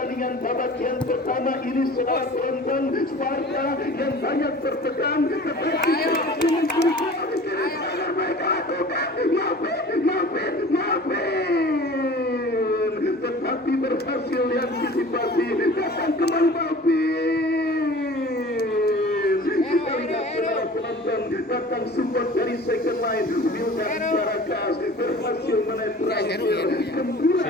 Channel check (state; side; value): normal; both; correlation 0.43